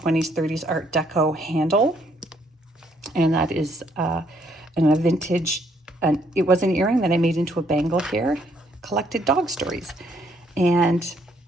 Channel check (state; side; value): normal; both; correlation 0.69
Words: 30s Art Deco handle. And that is a vintage, it was an earring that I made into a bangle here. Collected dog stories. And